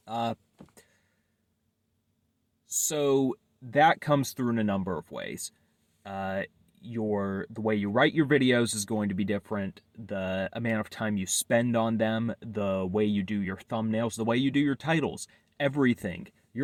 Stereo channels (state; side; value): identical; both; correlation 1.00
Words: Uh, so that comes through in a number of ways. Uh, the way you write your videos is going to be different. The amount of time you spend on them, the way you do your thumbnails, the way you do your titles, everything.